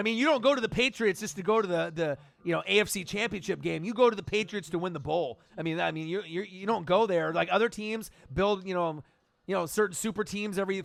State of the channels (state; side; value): identical; both; correlation 1.00